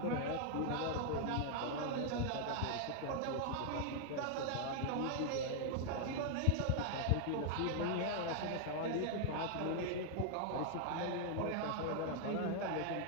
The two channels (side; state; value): both; different; correlation 0.00